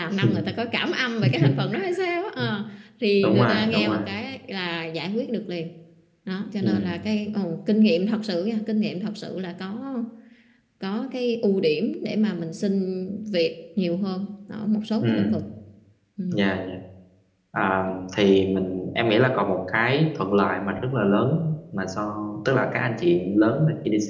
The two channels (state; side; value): identical; both; correlation 1.00